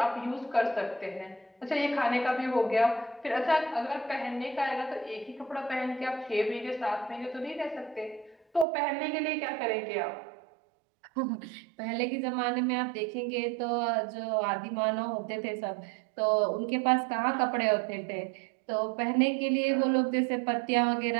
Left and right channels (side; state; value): left; drops out; at 8.7 s